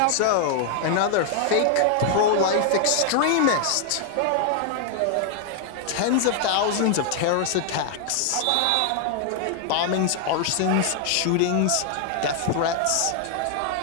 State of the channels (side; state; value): both; different; correlation 0.00